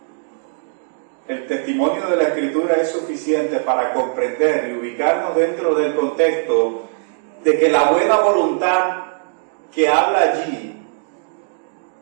El testimonio de la Escritura es suficiente para comprender y ubicarnos dentro del contexto de que la buena voluntad que habla allí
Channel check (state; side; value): silent; left; digital silence